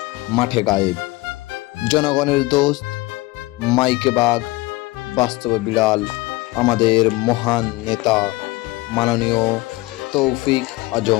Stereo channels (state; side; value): quieter; right; 21.1 dB